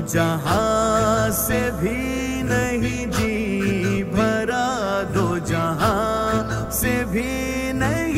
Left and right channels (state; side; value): identical; both; correlation 1.00